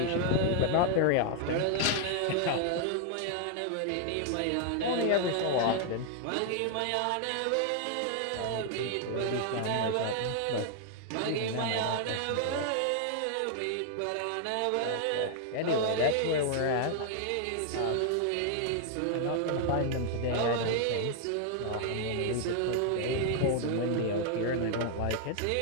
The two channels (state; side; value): different; both; correlation 0.00